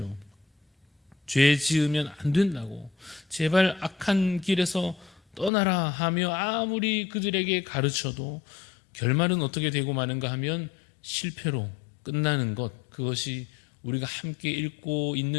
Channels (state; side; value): drops out; right; at 5.5 s